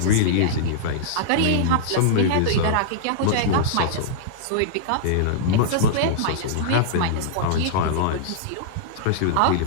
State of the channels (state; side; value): different; both; correlation -0.02